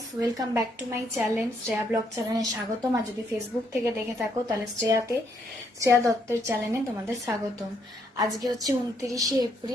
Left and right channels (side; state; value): both; normal; correlation 0.73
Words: welcome back to my channel Shreya blog চ্যানেলে স্বাগতম। আর যদি ফেসবুক থেকে দেখে থাকো তাহলে শ্রেয়া দত্তের চ্যানেলে তোমাদের স্বাগতম। আজকে হচ্ছে 29শে